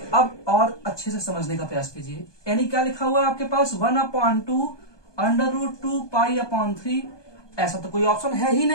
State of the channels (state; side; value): late; right; 1.2 ms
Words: अब और अच्छे से समझने का प्रयास कीजिए, यानी क्या लिखा हुआ है आपके पास, 1/2 √2 पाई अपॉन 3। ऐसा तो कोई ऑप्शन है ही